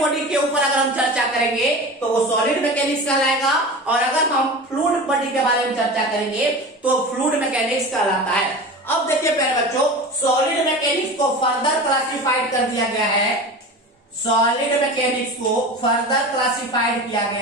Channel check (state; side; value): normal; both; correlation 0.32